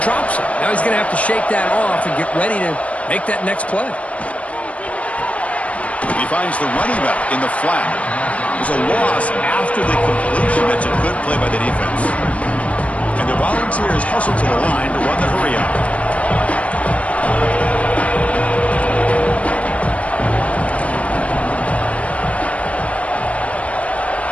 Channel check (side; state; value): right; late; 0.065 ms